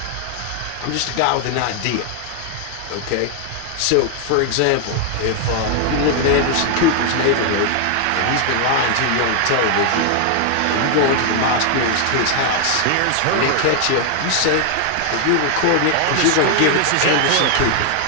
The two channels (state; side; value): different; both; correlation 0.00